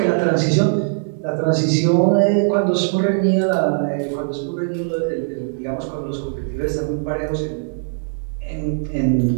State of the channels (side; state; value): left; silent; digital silence